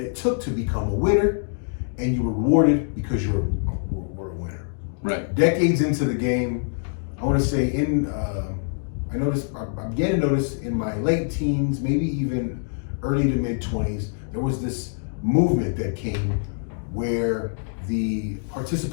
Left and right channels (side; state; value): right; silent; digital silence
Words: it took to become a winner, and you were rewarded because you were a winner. Right. Decades into the game, I want to say I began to notice in my late teens, maybe even early to mid 20s, there was this movement that came where the